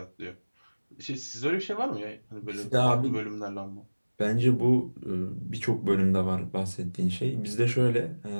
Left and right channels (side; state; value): both; inverted; correlation -1.00